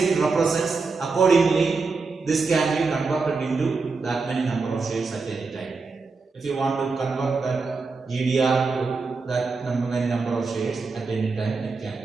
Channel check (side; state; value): left; quieter; 4.3 dB